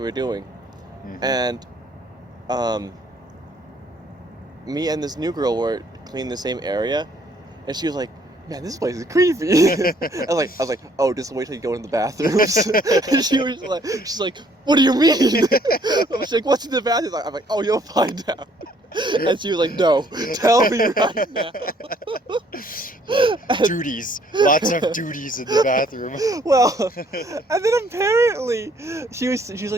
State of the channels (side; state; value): both; normal; correlation 0.63